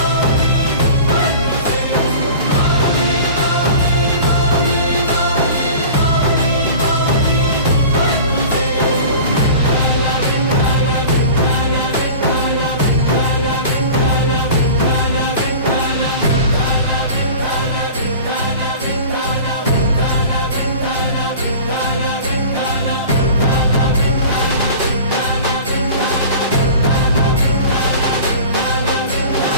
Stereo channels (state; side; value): inverted; both; correlation -0.39